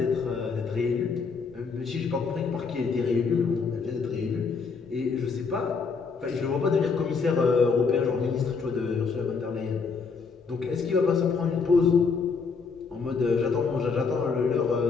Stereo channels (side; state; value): right; quieter; 5.1 dB